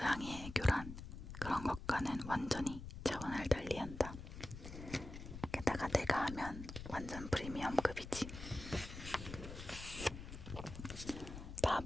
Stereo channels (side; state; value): left; noise; rumble, 10 dB below the sound